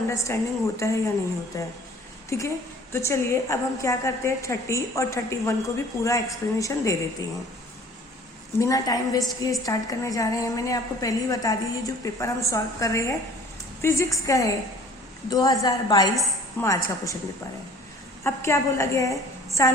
होता है या नहीं होता है। ठीक है, तो चलिए अब हम क्या करते हैं, 30 और 31 को भी पूरा एक्सप्लेनेशन दे देते हैं। बिना टाइम वेस्ट किए स्टार्ट करने जा रहे हैं। मैंने आपको पहले ही बता दी, ये जो पेपर हम सॉल्व कर रहे हैं फिजिक्स का है, 2022 मार्च का क्वेश्चन पेपर है। अब क्या बोला गया है,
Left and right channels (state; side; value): normal; both; correlation 0.50